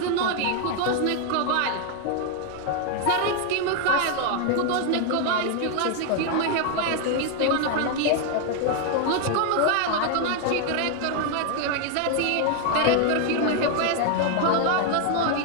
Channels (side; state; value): both; different; correlation 0.00